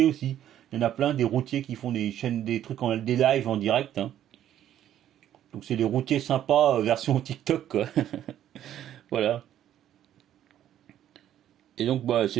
aussi. Il y en a plein, des routiers qui font des chaînes, des trucs des lives en direct. Hein. Donc c'est des routiers sympas version TikTok quoi. Voilà. Et donc bah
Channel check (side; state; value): left; quieter; 11.3 dB